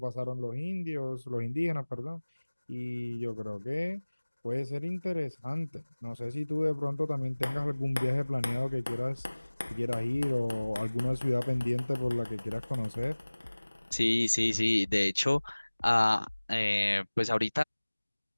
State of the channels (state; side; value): inverted; both; correlation -1.00